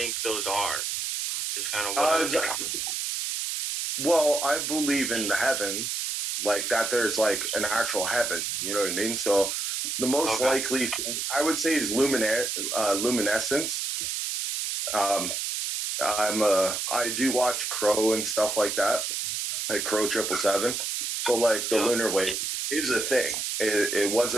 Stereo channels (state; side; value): noise; right; hiss, 2 dB below the sound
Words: those are? Just kind of well, I believe in the heavens, like that there's like an actual heaven, you know what I mean? So the most likely thing I would say is luminescence. I do watch Crow and stuff like that, like Crow 777. So like the lunar wave is a thing. It was